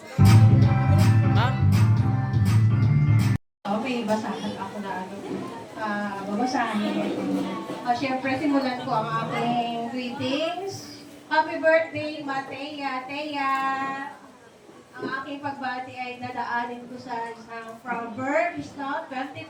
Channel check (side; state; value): both; identical; correlation 1.00